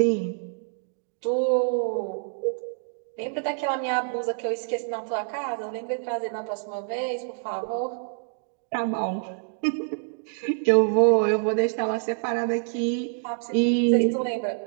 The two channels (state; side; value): silent; left; digital silence